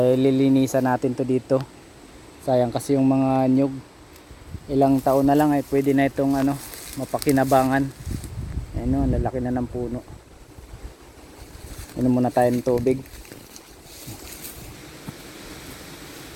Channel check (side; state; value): both; identical; correlation 1.00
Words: lilinisan natin to dito. Sayang kasi yung mga nyug. Ilang taon na lang ay pwede na itong mapakinabangan. Ayan o, lalaki na ng puno. Inom muna tayo ng tubig.